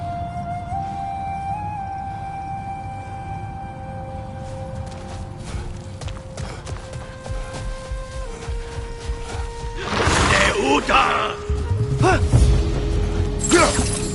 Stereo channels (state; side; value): identical; both; correlation 1.00